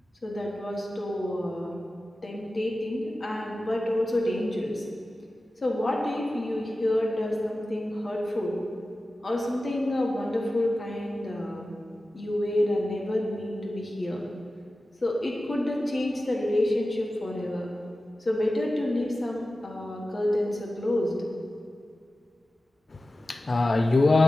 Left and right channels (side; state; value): both; normal; correlation 0.95